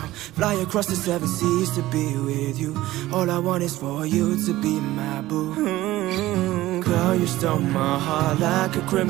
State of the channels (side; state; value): left; quieter; 16.6 dB